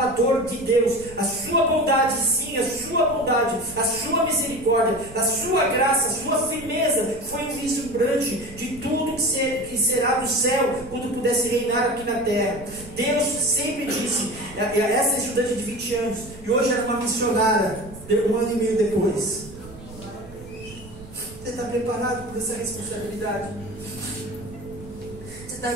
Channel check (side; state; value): right; noise; rumble, 17 dB below the sound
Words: de Deus. A sua bondade, sim, a sua bondade, a sua misericórdia, a sua graça, a sua firmeza foi vislumbrante de tudo que será do céu quando pudesse reinar aqui na terra. Deus sempre disse, essa estudante de 20 anos, e hoje era uma missionária, 1 ano e meio depois. Você está preparado por essa responsabilidade? Você está